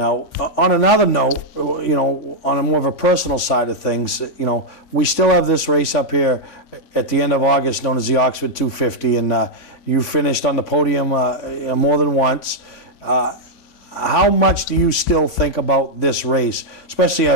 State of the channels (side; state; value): right; late; 3.4 ms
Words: on another note, on a more of a personal side of things, we still have this race up here at the end of August known as the Oxford 250, and you finished on the podium more than once. How much do you still think about this race, especially